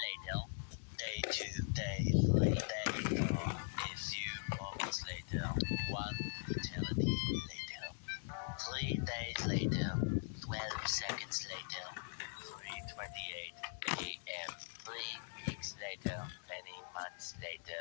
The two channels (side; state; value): right; silent; digital silence